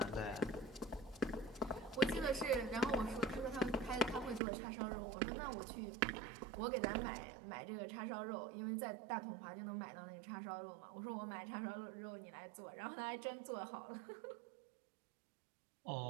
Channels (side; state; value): left; drops out; at 4.4 s